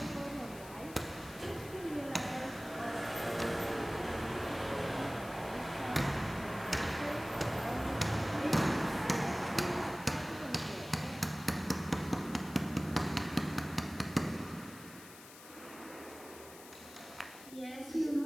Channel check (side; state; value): left; noise; hiss, 17 dB below the sound